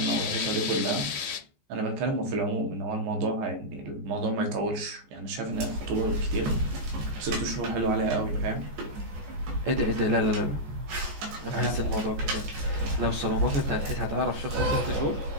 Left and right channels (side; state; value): left; late; 14 ms